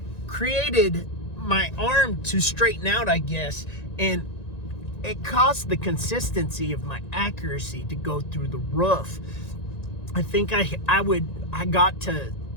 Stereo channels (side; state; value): right; late; 1.9 ms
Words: created my arm to straighten out, I guess, and it caused the consistency of my accuracy to go through the roof. I think I got to